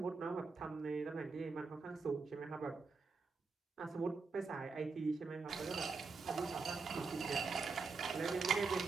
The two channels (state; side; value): quieter; left; 4.5 dB